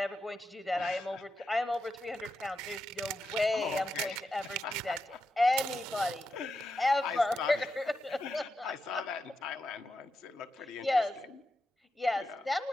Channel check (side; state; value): both; normal; correlation 0.87